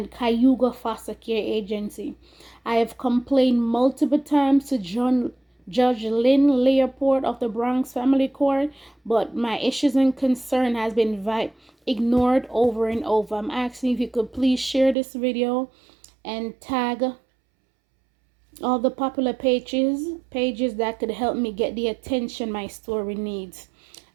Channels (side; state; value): left; drops out; at 15.0 s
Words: Cayuga foster care agency. I have complained multiple times to Judge Lynn Leopold of the Bronx Family Court, but my issues and concern has been ignored over and over. I'm asking if you could please share this video and tag all the popular pages that could help me get the attention my story needs.